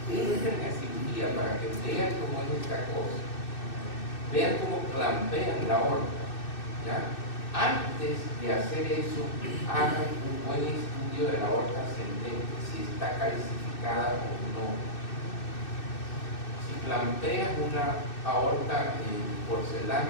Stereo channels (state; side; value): late; right; 2.6 ms